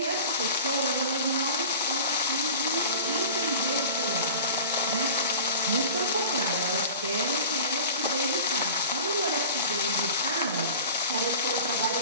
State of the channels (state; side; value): inverted; both; correlation -0.38